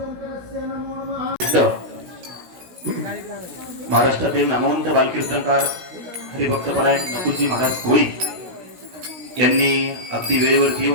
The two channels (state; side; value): late; left; 16 ms